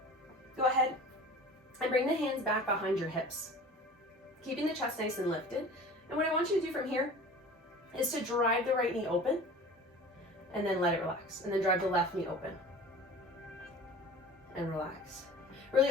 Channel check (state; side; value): normal; both; correlation 0.41